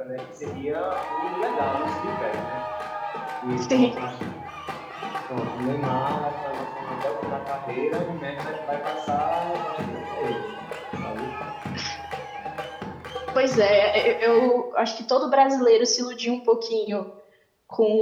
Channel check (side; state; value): both; identical; correlation 1.00